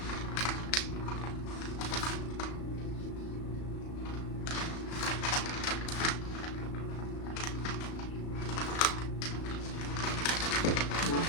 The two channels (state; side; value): late; right; 35 ms